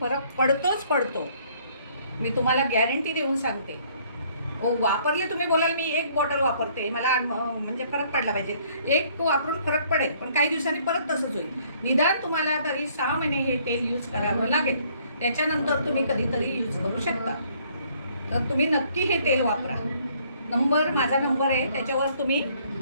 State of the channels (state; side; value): inverted; both; correlation -0.62